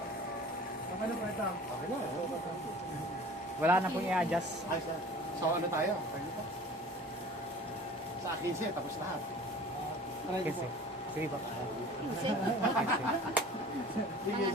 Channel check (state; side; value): normal; both; correlation 0.44